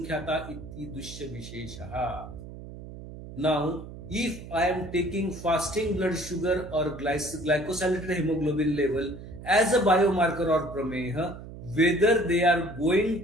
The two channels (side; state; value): right; noise; hum, 13 dB below the sound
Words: इति दुष्य विशेषः. Now, if I am taking fasting blood sugar or glycosylated hemoglobin level as a biomarker or prameha, whether they are